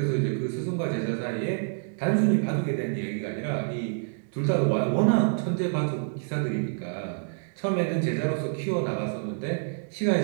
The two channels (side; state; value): left; silent; digital silence